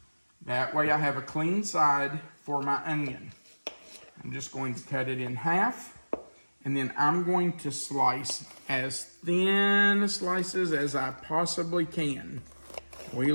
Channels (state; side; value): inverted; both; correlation -1.00